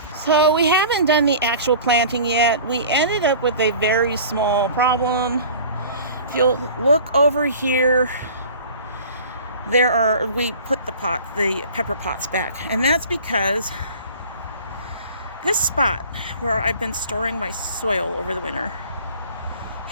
So we haven't done the actual planting yet. We ended up with a very small problem. If you'll look over here, we put the pepper pots back. And that's because this spot where I've been storing my soil over the winter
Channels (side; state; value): both; inverted; correlation -0.44